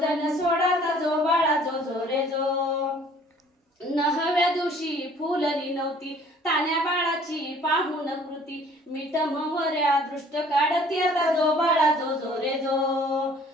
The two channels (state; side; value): normal; both; correlation 0.54